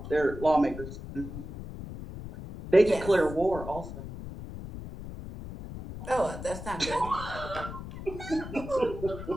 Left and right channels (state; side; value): noise; left; rumble, 10 dB below the sound